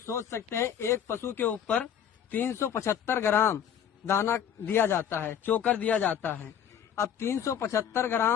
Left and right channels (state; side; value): quieter; right; 8.9 dB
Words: सोच सकते हैं एक पशु के ऊपर 375 ग्राम दाना दिया जाता है, चोकर दिया जाता है। अब 375